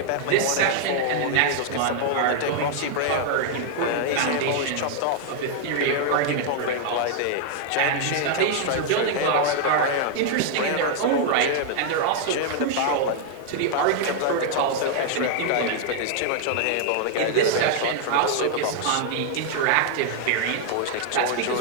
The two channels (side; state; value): both; different; correlation 0.00